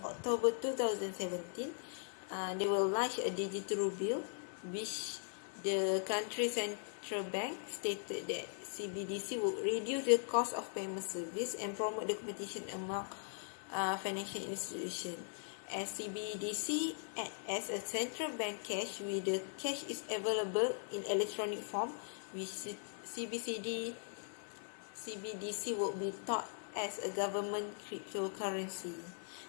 October 2017, they will launch a digital ruble, which the country central bank stated that CBDC will reduce the cost of payment service and promote the competition among financial institutions. As CBDC as a central bank cash, where the cash is available in electronic form, which CBDC will be taught as a government cryptocurrency.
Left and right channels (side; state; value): right; silent; 51 dB below the other